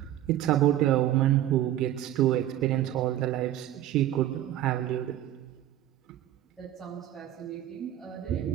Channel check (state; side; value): quieter; left; 12.7 dB